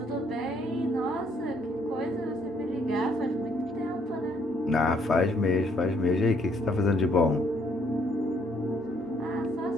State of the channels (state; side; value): normal; both; correlation 0.67